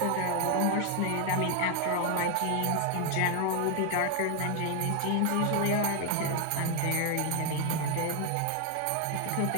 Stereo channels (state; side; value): different; both; correlation 0.01